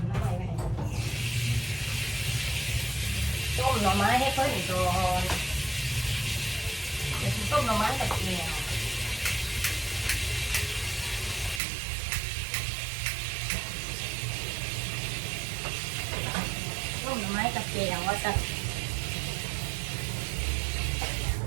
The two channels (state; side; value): drops out; left; at 11.6 s